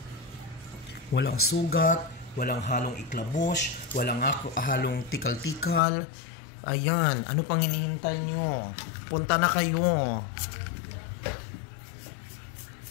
Walang sugat, walang halong iklabos, walang halong tikal-tikal. Ayan, ano pang hinihintay nyo? Punta na kayo.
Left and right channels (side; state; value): right; drops out; at 5.8 s